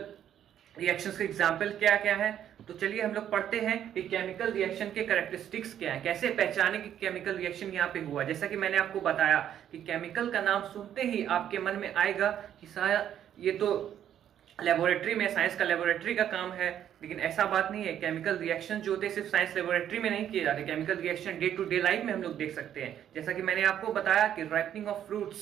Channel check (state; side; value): quieter; left; 10.2 dB